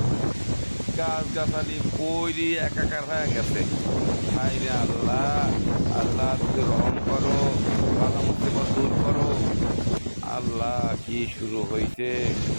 গাছ গাছালি পইরি একাকার হয়ে গেছে। হাই রে আল্লাহ, আল্লাহ তুমি রহম করো, বাধা মুসিবত দূর করো। আল্লাহ কি শুরু হয়েছে,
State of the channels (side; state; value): both; inverted; correlation -1.00